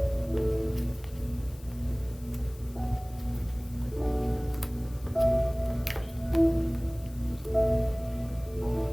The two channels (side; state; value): left; noise; hiss, 23 dB below the sound